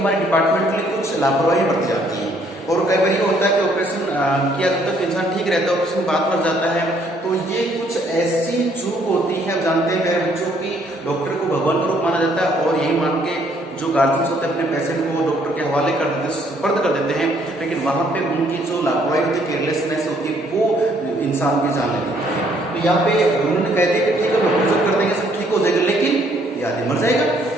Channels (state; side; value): normal; both; correlation 0.66